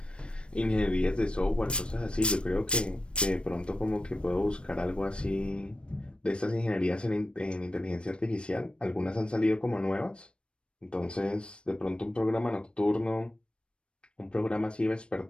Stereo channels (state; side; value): late; right; 0.057 ms